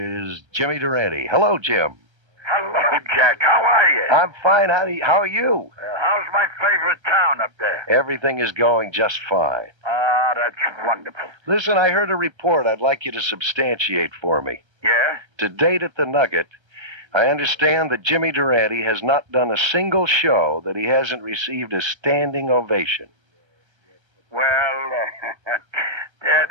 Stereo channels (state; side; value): late; left; 1.3 ms